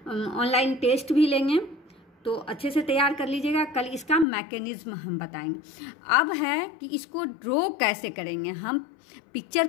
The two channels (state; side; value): drops out; right; at 4.2 s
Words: ऑनलाइन टेस्ट भी लेंगे, तो अच्छे से तैयार कर लीजिएगा। कल इसका मैकेनिज्म हम बताएंगे। अब है कि इसको ड्रॉ कैसे करेंगे, हम पिक्चर